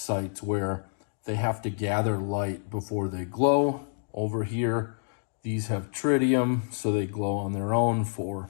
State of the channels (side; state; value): right; silent; digital silence